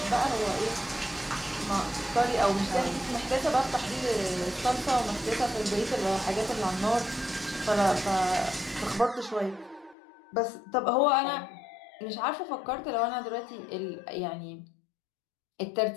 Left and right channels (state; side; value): drops out; right; at 10.0 s